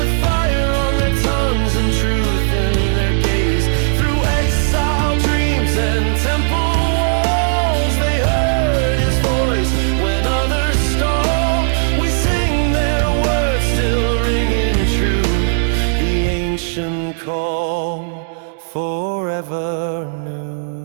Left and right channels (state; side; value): silent; left; digital silence